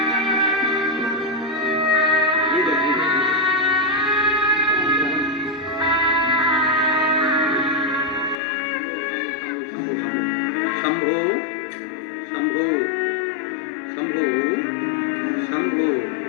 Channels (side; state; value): right; drops out; at 8.4 s